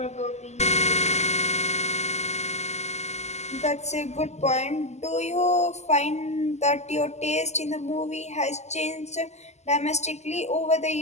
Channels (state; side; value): late; right; 0.33 ms